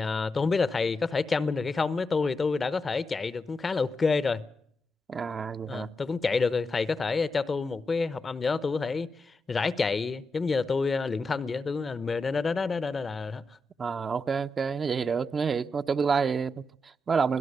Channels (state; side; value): normal; both; correlation 0.87